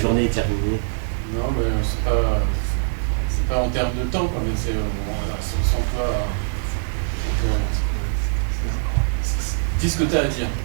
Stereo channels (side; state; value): left; silent; 64 dB below the other